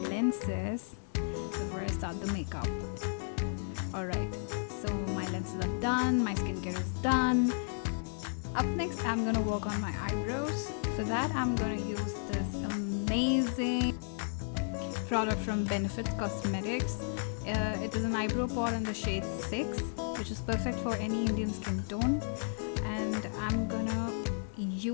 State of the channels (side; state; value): right; silent; digital silence